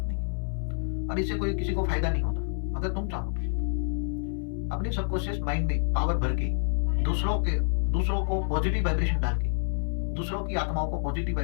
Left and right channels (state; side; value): silent; right; digital silence